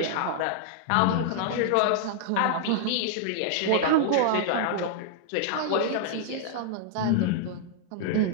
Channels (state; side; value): different; both; correlation 0.00